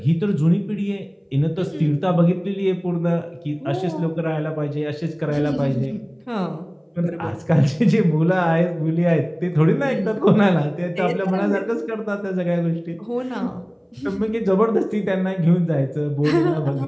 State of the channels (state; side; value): identical; both; correlation 1.00